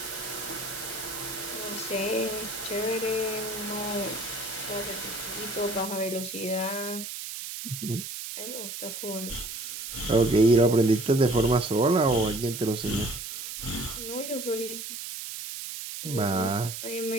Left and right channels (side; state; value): right; noise; hiss, 7 dB below the sound